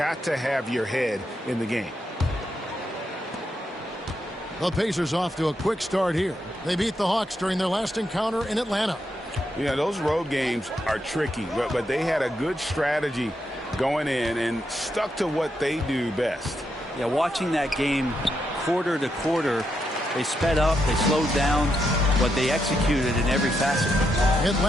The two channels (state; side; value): normal; both; correlation 0.82